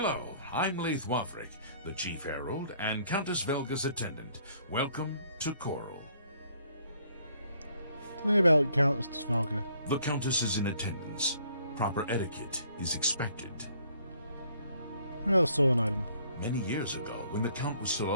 I'm Leith Wavrik, the Chief Herald and Countess Velga's attendant. Welcome to Coral. Tell me about Countess Velga. The Countess is in attendance. Proper etiquette is expected. Oh, stolen item. Many years ago, when the Count was still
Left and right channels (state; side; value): inverted; both; correlation -0.62